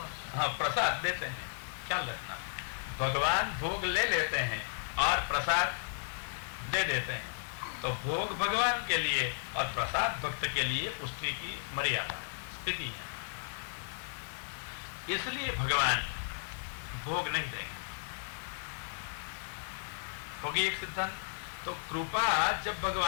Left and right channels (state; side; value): silent; right; 55 dB below the other